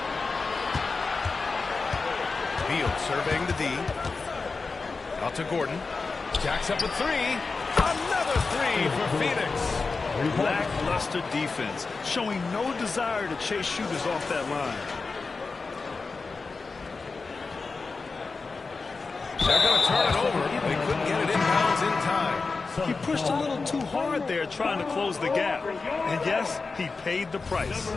Beal surveying the D. Out to Gordon. Jacks up with 3. Another 3 for Phoenix. Lackluster defense, showing no desire to chase shooters off that line. They're going to turn it over. They couldn't get it inbounds in time. He pushed a little too hard there trying to close the gap. And yes, he paid the price.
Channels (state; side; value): quieter; right; 4.2 dB